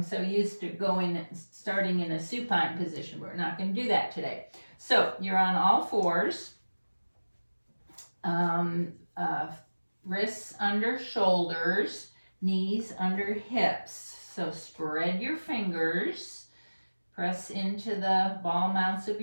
so used to starting in a supine position. We're not going to do that today. So you're on all fours. Wrists under shoulders, knees under hips. So spread your fingers. Press into the ball mounts of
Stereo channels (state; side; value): inverted; both; correlation -1.00